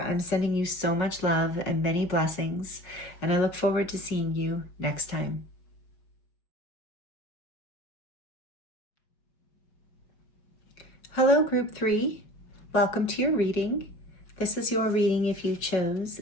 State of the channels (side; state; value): right; late; 5.4 ms